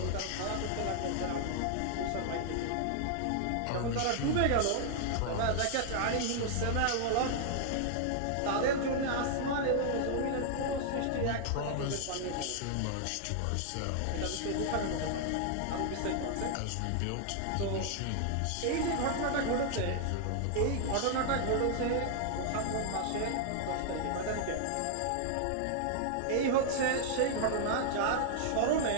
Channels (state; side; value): different; both; correlation 0.00